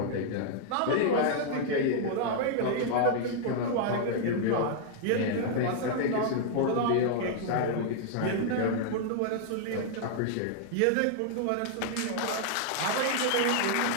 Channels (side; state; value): both; different; correlation -0.01